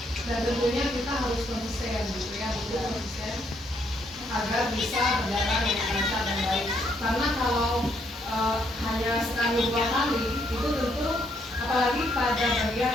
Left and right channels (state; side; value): normal; both; correlation 0.73